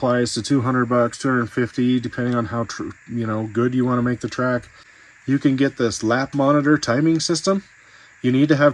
to $200, $250, depending on how good you want to make the track. You can get this lap monitor timing system. You need to have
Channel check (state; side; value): identical; both; correlation 1.00